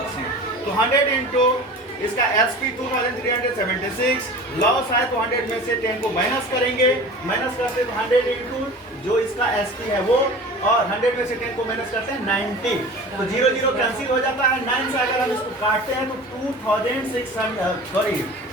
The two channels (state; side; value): normal; both; correlation 0.38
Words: तो 100 इंटू इसका एसपी 2376 लॉस है, तो 100 में से 10 को माइनस करेंगे, माइनस करते हैं 100 इंटू जो इसका एसपी है वो, और 100 में से 10 को माइनस करते हैं 90। तो 0 0 कैंसिल हो जाता है। 9 से अगर हम इसको काटते हैं तो